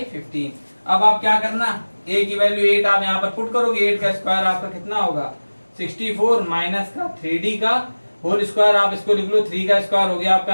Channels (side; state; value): both; inverted; correlation -1.00